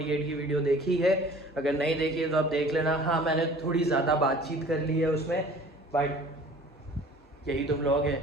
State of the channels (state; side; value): normal; both; correlation 0.48